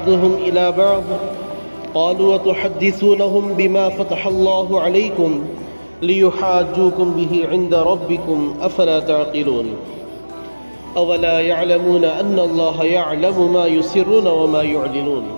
إلى بعض قالوا وتحدثونهم بما فتح الله عليكم ليحاجوكم به عند ربكم أفلا تعقلون أولا يعلمون أن الله يعلم ما يسرون وما يعلنون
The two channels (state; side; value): inverted; both; correlation -1.00